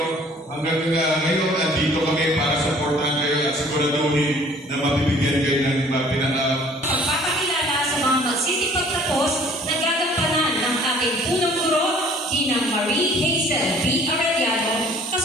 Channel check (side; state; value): both; normal; correlation 0.54